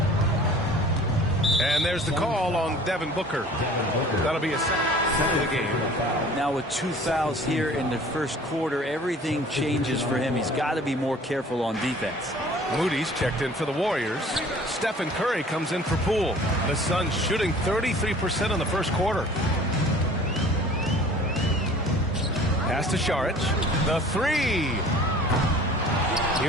And there's the call on Devin Booker. That'll be a second of the game. Now with 2 fouls here in the first quarter, everything changes for him. He's got to be more careful on defense. Moody's checked in for the Warriors. Stephen Curry comes in for Poole. The Suns shooting 33% in the first quarter. Pass to Šarić. The three.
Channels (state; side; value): normal; both; correlation 0.48